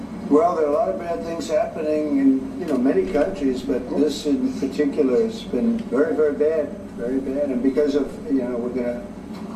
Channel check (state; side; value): identical; both; correlation 1.00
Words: Well, there are a lot of bad things happening in many countries, but this in particular has been very, very bad, very bad. And because of we're going